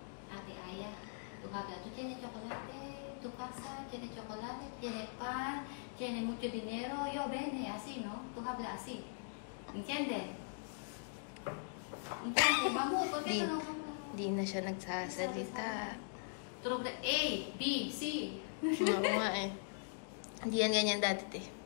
Ate Aya. Tú hablas, tú tienes chocolate, tu casa tiene chocolate, tiene pan, tiene mucho dinero. Yo viene así, ¿no? Tú hablas así. ¿Entiendes? ¿Entiendes? Vamos, ¿por qué tú no hablas? Di na siya nagsasalita. Turog na A, B, C. Oo nga eh. Hindi yan ganyan dati, te.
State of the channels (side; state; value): right; silent; digital silence